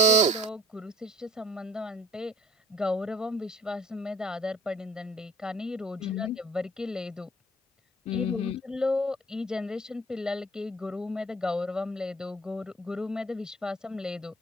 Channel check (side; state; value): both; normal; correlation 0.51